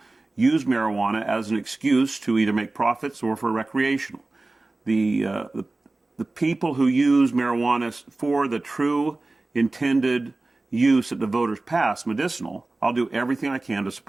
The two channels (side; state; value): left; quieter; 3.1 dB